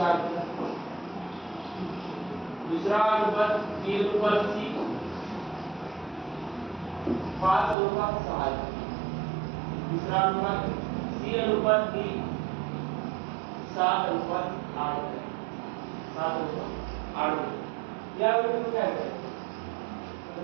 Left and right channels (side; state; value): left; drops out; at 7.8 s